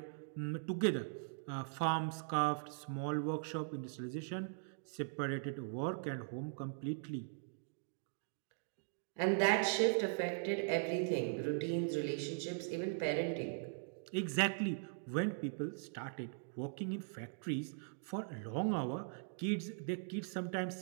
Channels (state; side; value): silent; left; digital silence